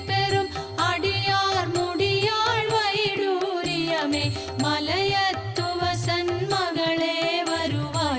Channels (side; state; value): both; identical; correlation 1.00